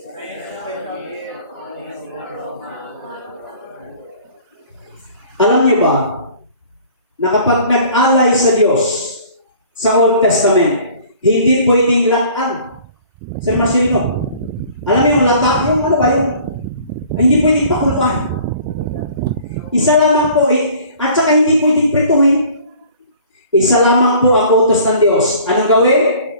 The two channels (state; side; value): inverted; both; correlation -0.51